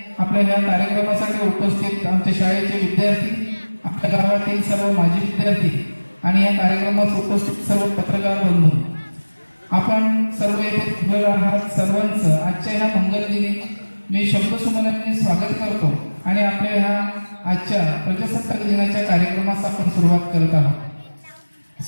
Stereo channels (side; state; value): both; inverted; correlation -1.00